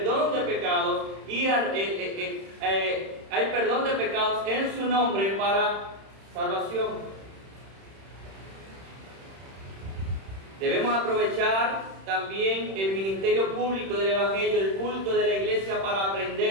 de pecados y hay perdón de pecados en su nombre para salvación. Debemos aprovechar también el ministerio público del Evangelio, el culto de la iglesia para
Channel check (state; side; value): late; left; 31 ms